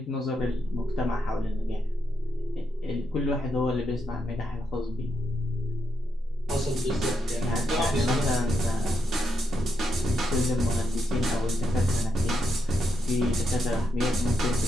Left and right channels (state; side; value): normal; both; correlation 0.82